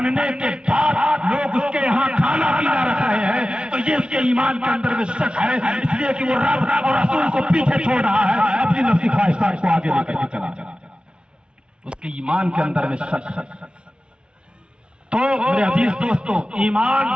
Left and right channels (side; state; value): left; late; 0.056 ms